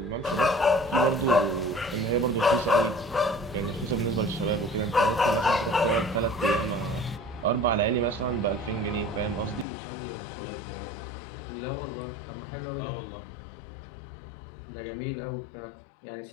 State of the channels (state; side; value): drops out; right; at 9.7 s